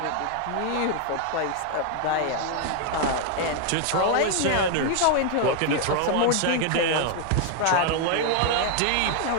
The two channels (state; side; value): different; both; correlation 0.00